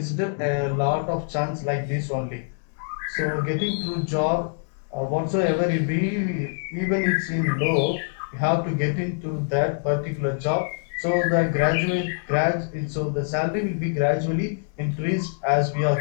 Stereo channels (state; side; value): silent; right; digital silence